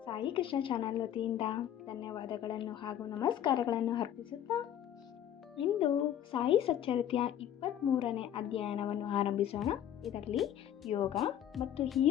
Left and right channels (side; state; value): right; quieter; 10.7 dB